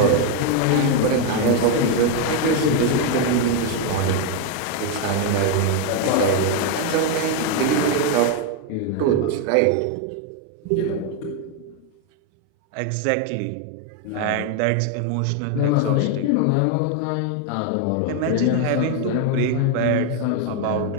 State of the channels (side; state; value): both; different; correlation 0.01